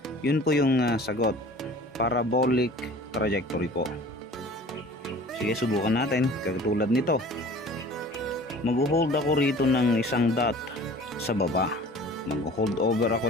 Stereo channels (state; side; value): normal; both; correlation 0.45